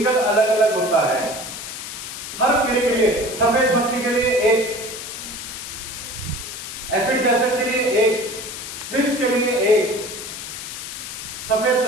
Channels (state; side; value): noise; left; hiss, 8 dB below the sound